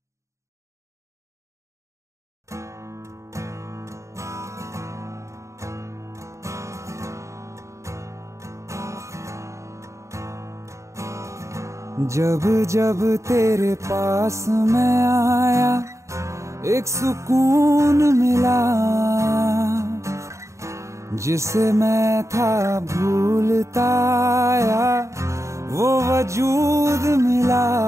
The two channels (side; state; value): left; late; 0.14 ms